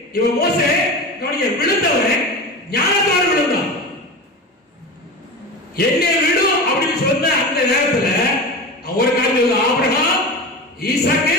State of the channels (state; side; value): normal; both; correlation 0.27